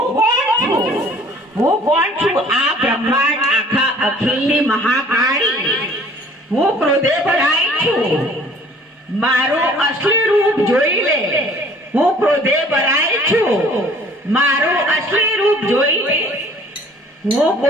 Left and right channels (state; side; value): normal; both; correlation 0.53